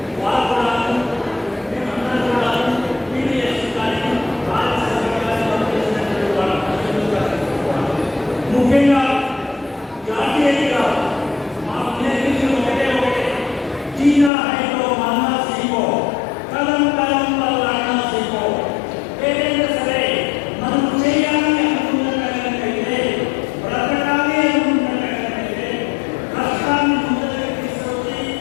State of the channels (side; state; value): right; drops out; at 14.3 s